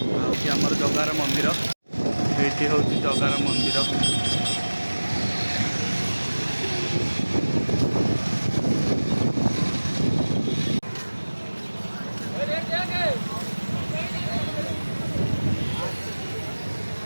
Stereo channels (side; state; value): both; inverted; correlation -1.00